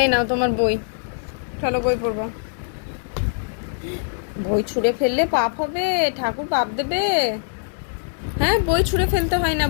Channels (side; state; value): right; silent; 64 dB below the other